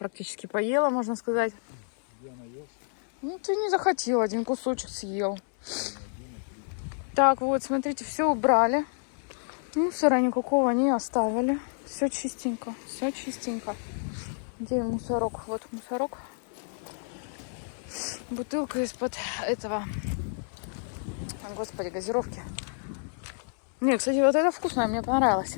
поела, можно сказать. Я наелся. Ну, ты не захотел, один кусочек съел. Так, вот, смотрите, все убрали. Мусора никакого не оставили. Все чистенько, все чистенько. Где мусорок? Вот мусорок. Бутылка из-под этого, господи, газировки. Не, кстати, вот это вкусное, мне понравилось.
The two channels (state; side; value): silent; right; 58 dB below the other